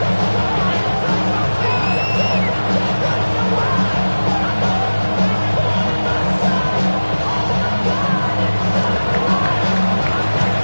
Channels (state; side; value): inverted; both; correlation -1.00